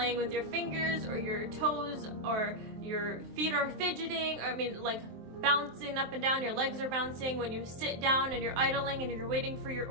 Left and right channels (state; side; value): late; left; 23 ms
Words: with your fingers or your toes, or your feet are fidgeting, or, I mean, like bouncing up and down, your legs are bouncing. When you sit down and you're idling and you're waiting for your